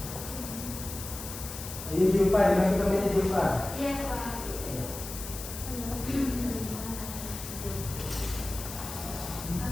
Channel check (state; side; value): noise; left; hiss, 9 dB below the sound